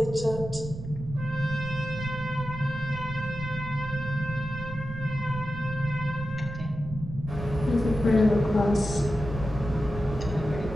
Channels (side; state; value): right; noise; rumble, 10 dB below the sound